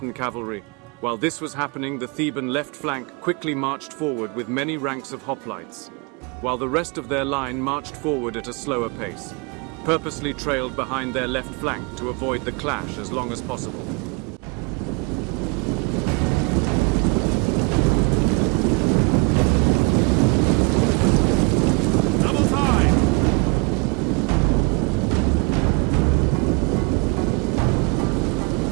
cavalry. While this was happening, the Theban left flank quickly marched forward with many ranks of hoplites, while the rest of their line marched forward at a slower pace, purposely trailed behind their left flank to avoid the clash as long as possible.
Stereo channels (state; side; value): quieter; left; 31.1 dB